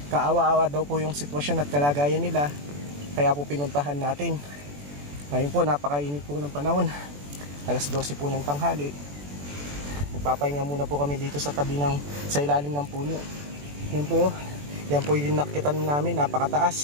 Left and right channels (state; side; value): late; left; 21 ms